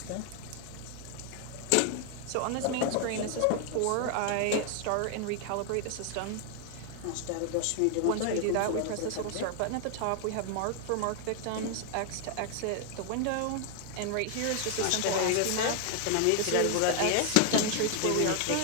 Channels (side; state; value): both; different; correlation 0.00